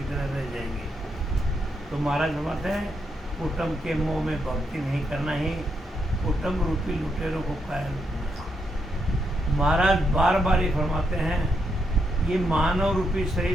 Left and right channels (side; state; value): both; normal; correlation 0.80